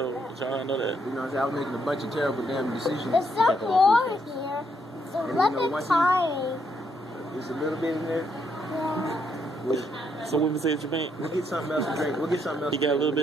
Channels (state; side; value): normal; both; correlation 0.75